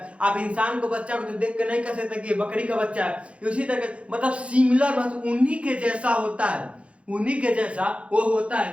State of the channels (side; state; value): left; late; 0.061 ms